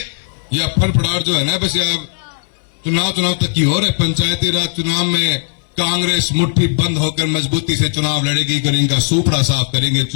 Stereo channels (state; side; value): silent; right; digital silence